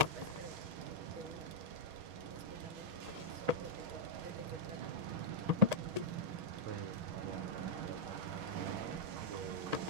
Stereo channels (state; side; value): late; left; 6.3 ms